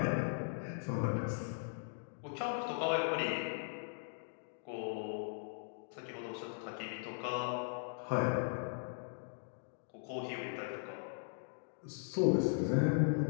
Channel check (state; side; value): silent; right; digital silence